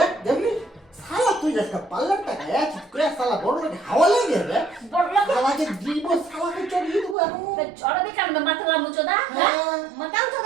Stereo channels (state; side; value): drops out; left; at 7.2 s